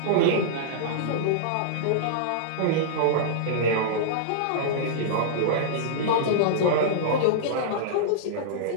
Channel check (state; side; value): different; both; correlation -0.02